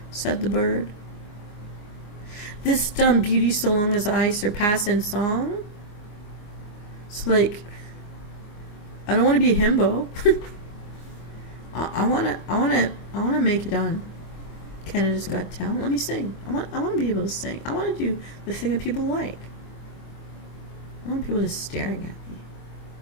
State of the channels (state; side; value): late; right; 24 ms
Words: Said the bird. "This dumb beauty so long as I surpass in song." So, I don't want to be a himbo. I wanna make it on Canada's Got Talent. Let me sing. I want to be able to sing. I want to do the thing that people like. I want people just staring at me.